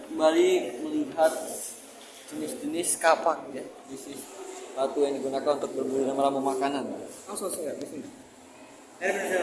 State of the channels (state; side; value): identical; both; correlation 1.00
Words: kembali melihat jenis-jenis kapak ya. Jenis batu yang digunakan untuk berburu dan meramu makanan. Langsung saya di sini.